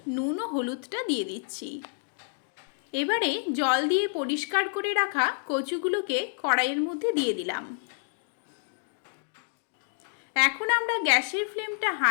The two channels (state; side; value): silent; right; digital silence